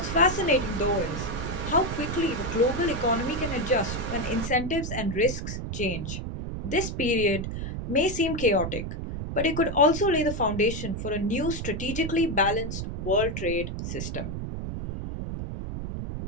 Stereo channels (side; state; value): right; noise; rumble, 5 dB below the sound